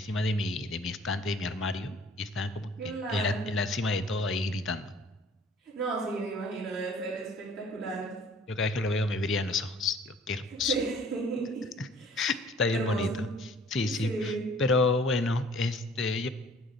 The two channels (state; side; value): normal; both; correlation 0.53